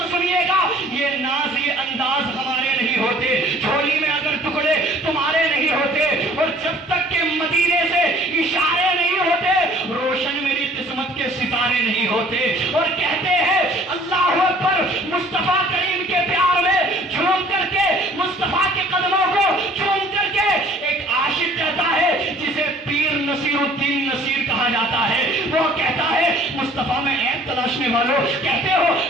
سنیے گا, یہ ناز یہ انداز ہمارے نہیں ہوتے, جھولی میں اگر ٹکڑے تمہارے نہیں ہوتے, اور جب تک کہ مدینے سے اشارے نہیں ہوتے روشن میری قسمت کے ستارے نہیں ہوتے. اور کہتے ہیں اللہ اکبر, مصطفیٰ کریم کے پیار میں جھوم کر کے, مصطفیٰ کے قدموں کو جھوم کر کے ایک عاشق کہتا ہے جسے پیر نصیر الدین نصیر کہا جاتا ہے, وہ کہتا ہے مصطفیٰ میں عیب تلاشنے والوں, کہتے ہو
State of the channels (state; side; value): normal; both; correlation 0.54